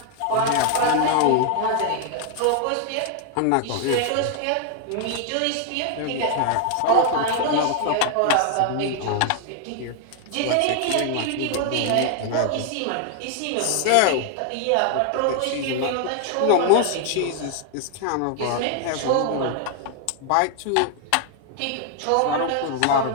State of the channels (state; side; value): different; both; correlation 0.00